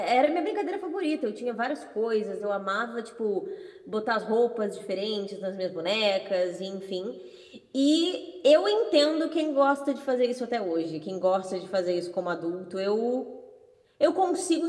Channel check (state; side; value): identical; both; correlation 1.00